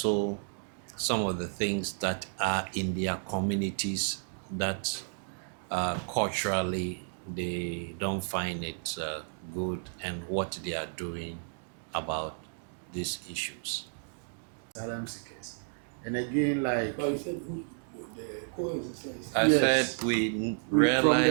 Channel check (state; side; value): silent; left; digital silence